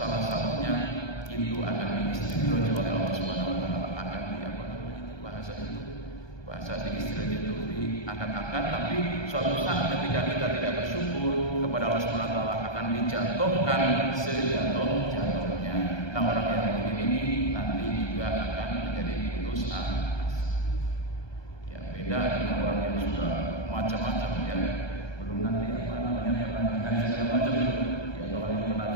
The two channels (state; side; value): late; right; 1.2 ms